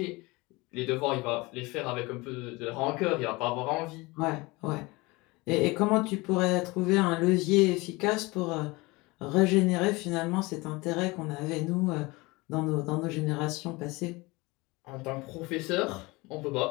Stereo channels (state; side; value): quieter; right; 23.6 dB